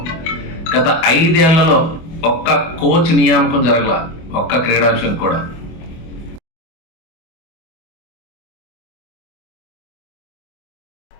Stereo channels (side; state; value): right; late; 24 ms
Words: గత 5 ఏళ్లలో ఒక్క కోచ్ నియామకం జరగల, ఒక్క క్రీడాంశం కూడా.